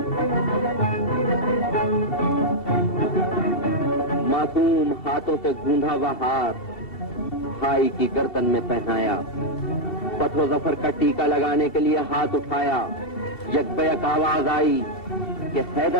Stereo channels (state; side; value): late; right; 2.7 ms